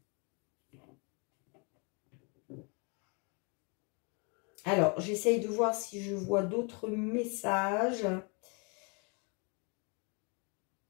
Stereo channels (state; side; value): quieter; right; 34.3 dB